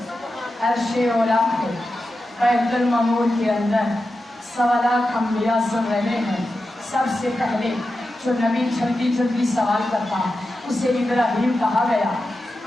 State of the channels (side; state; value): both; normal; correlation 0.91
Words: عرش اولا پہ بیت المعمور کے اندر 1.25 لاکھ انبیاء سن رہے ہیں. سب سے پہلے جو نبی جلدی جلدی سوال کرتا اسے ابراہیم کہا گیا.